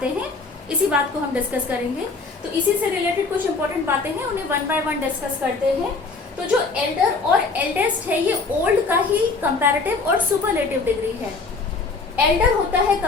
हैं, इसी बात को हम डिस्कस करेंगे। तो इसी से रिलेटेड कुछ इंपॉर्टेंट बातें हैं, उन्हें वन बाय वन डिस्कस करते हैं। तो जो एल्डर और एल्डेस्ट है ये ओल्ड का ही कंपैरेटिव और सुपरलेटिव डिग्री है। एल्डर होता है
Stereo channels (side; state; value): right; quieter; 4.1 dB